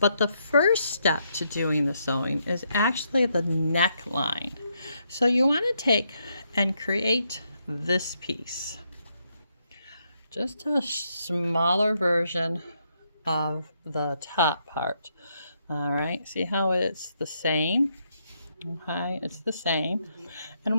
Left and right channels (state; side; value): inverted; both; correlation -0.77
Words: the first step to doing the sewing is actually the neckline. So you want to take and create this piece, just a smaller version of the top part. All right, see how it's the same? Okay, it's the same. And